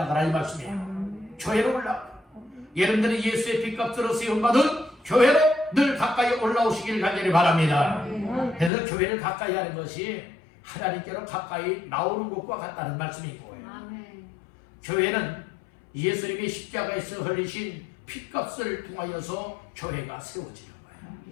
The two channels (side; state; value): right; drops out; at 8.7 s